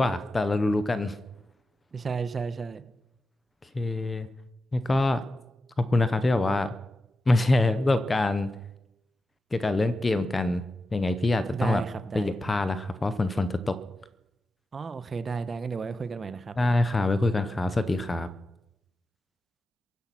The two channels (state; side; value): normal; both; correlation 0.91